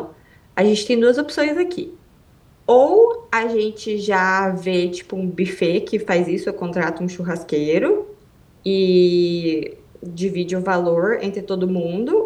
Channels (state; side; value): identical; both; correlation 1.00